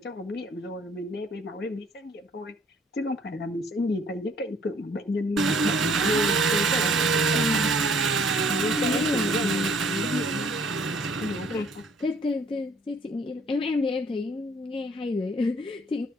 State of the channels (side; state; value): both; normal; correlation 0.58